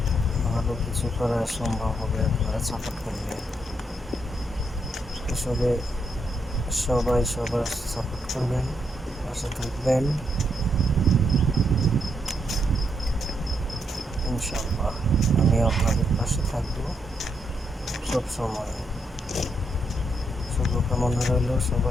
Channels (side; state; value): both; normal; correlation 0.78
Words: ভালো কিছু করা সম্ভব হবে আপনারা সাপোর্ট করলে। আসলে সবাই সবার সাপোর্ট করবেন, পাশে থাকবেন ইনশাআল্লাহ। আমি আপনাদের পাশে থাকবো সব সময়। শুভকামনা রইল